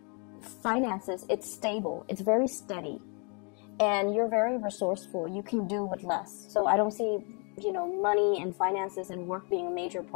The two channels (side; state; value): right; quieter; 36.1 dB